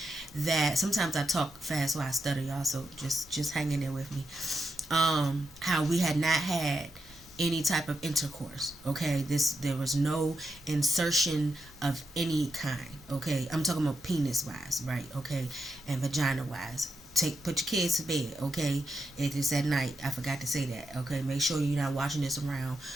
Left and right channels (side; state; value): both; normal; correlation 0.85